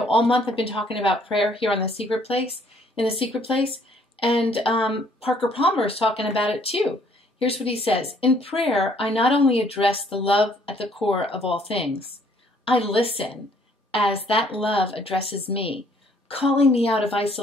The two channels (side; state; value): both; normal; correlation 0.63